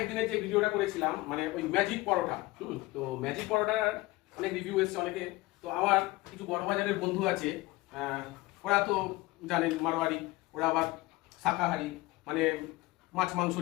দিনে যে ভিডিওটা করেছিলাম মানে ওই ম্যাজিক পরোটা, তো ম্যাজিক পরোটার অনেক রিভিউ এসছে অনেকে। তো আমার কিছু বড় বাজারের বন্ধু আছে, ওরা তো জানেন মারোয়ারি, ওরা আবার শাকাহারি, মানে মাছ মাংস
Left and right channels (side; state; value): right; quieter; 20.5 dB